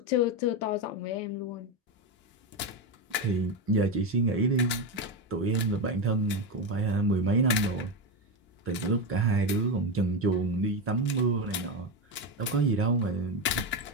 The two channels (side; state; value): both; normal; correlation 0.14